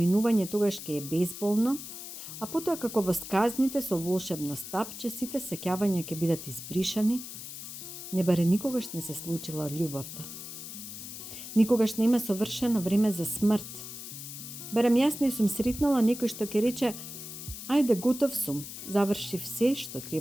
тогаш ќе е безболно, а потоа како во сказните со волшебно стапче сите сеќавања ќе бидат избришани, не баре никогаш не се случила љубовта. Никогаш нема совршено време за смрт. Барем јас не сум сретнала некој што ќе рече: ајде, готов сум, завршив се што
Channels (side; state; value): left; noise; hiss, 10 dB below the sound